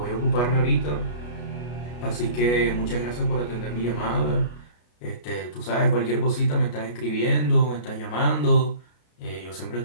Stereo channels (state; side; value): late; right; 33 ms